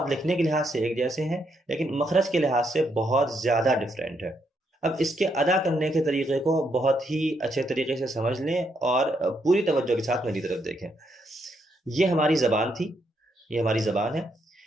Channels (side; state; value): both; normal; correlation 0.77